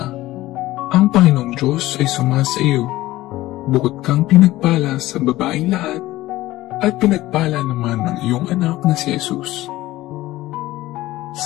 ang Panginoong Diyos ay sumasa iyo. Bukod kang pinagpala sa babaeng lahat, at pinagpala naman ng iyong anak na si Jesus.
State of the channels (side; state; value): right; quieter; 16.9 dB